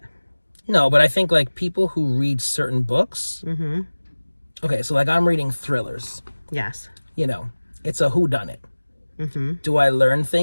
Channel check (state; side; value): inverted; both; correlation -1.00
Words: No, but I think like people who read certain books. Okay, so like I'm reading thrillers. Yes. You know, it's a whodunit. Do I learn